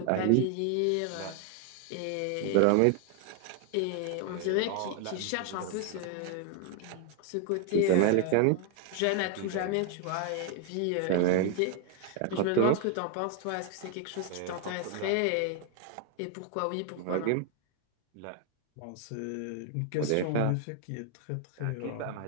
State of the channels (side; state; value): both; different; correlation 0.00